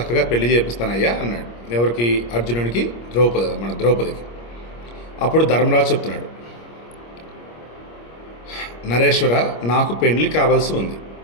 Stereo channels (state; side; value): late; right; 25 ms